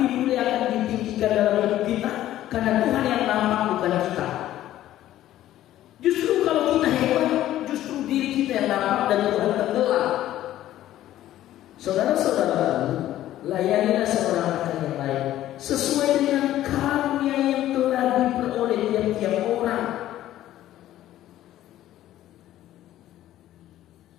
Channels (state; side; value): quieter; right; 13.4 dB